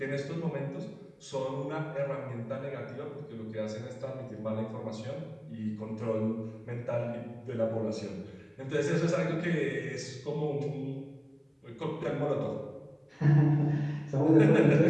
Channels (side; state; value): both; identical; correlation 1.00